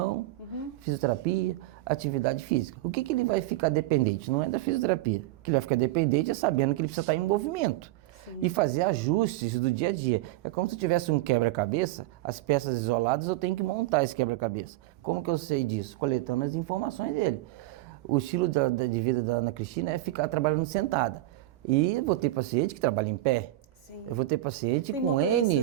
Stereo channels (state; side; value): quieter; left; 16.6 dB